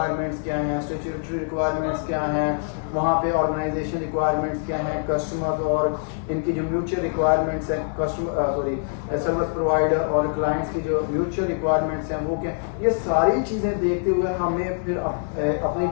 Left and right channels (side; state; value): right; silent; digital silence